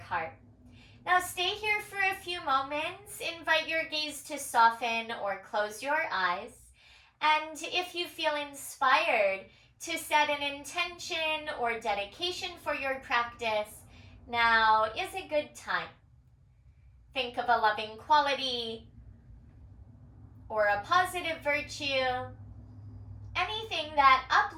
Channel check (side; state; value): both; identical; correlation 1.00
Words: Now stay here for a few moments. Invite your gaze to soften or close your eyes. And if you feel inspired to set an intention or dedication for your practice, now is a good time. Think of a loving quality or a positive virtue, anything that